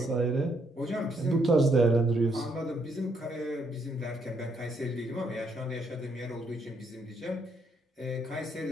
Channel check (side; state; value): both; normal; correlation 0.73